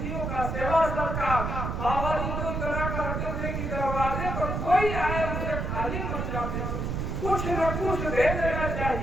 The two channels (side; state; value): right; noise; rumble, 2 dB below the sound